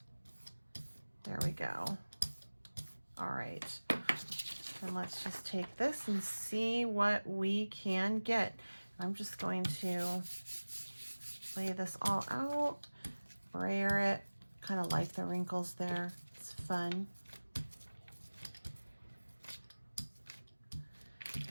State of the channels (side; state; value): both; inverted; correlation -1.00